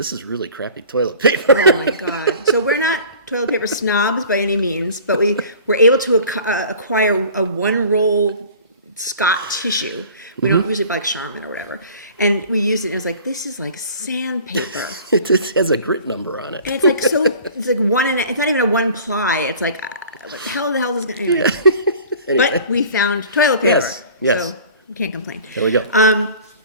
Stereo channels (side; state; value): both; inverted; correlation -0.45